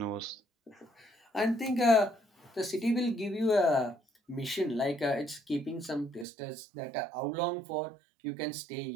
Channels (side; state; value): left; drops out; at 6.2 s